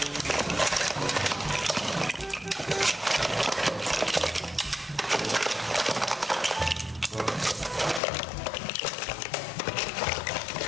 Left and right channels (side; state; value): right; drops out; at 8.0 s